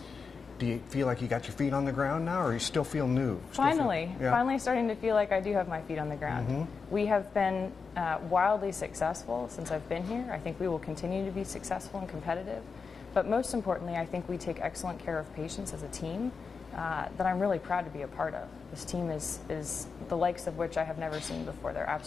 Do you feel like you got your feet on the ground now, or you still feel new? Finally starting to feel like I do have my feet on the ground. We have been wildly successful since I've been here. I think we will continue to be successful and competitive. But most importantly, I think we take excellent care of patients as a team that I'm really proud to be a part of. This team is the likes of which I have never seen before. They're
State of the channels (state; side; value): quieter; right; 5.1 dB